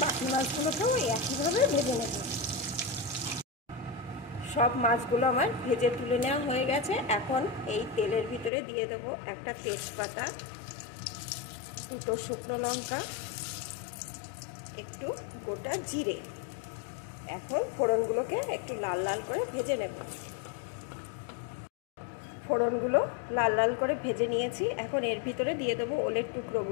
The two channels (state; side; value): drops out; right; at 8.5 s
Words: বাকি মাছগুলোকেও একইভাবে ভেজে নেব। सब माछगुलो आमार भेजे तुले नेওয়া হয়ে গেছে। এখন এই তেলের ভিতরে দিয়ে দেব একটা তেজপাতা, দুটো শুকনো লঙ্কা, একটু গোটা জিরে। এখন ফোড়নগুলোকে একটু লাল লাল করে ভেজে নেব। ফোড়নগুলো লাল লাল করে ভেজে নিয়েছি। এখন এর ভিতরে দিয়ে দেব ওলের